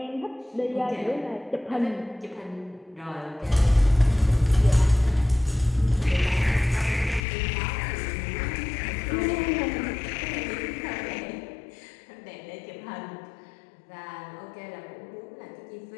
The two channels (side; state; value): right; drops out; at 7.2 s